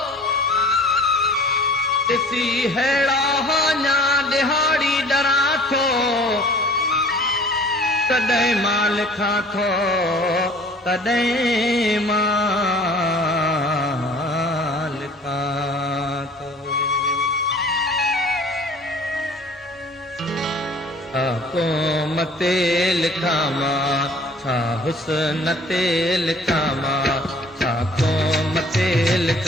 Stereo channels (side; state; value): both; normal; correlation 0.49